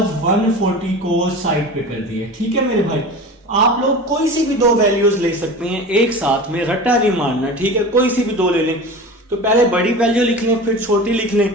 140 को साइड पे कर दिया। ठीक है मेरे भाई, आप लोग कोई सी भी दो वैल्यूज ले सकते हैं एक साथ में, रट्टा नहीं मारना। ठीक है, कोई सी भी दो ले लें। तो पहले बड़ी वैल्यू लिख लें फिर छोटी लिख लें,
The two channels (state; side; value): normal; both; correlation 0.33